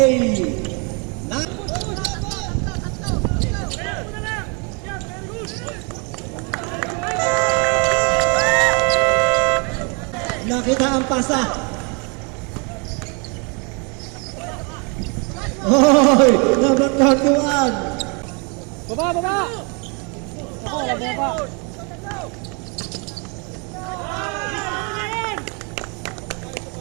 Nakita ang pasa. Hoy, number 31. Baba! Ako, baba!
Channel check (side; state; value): left; quieter; 33.8 dB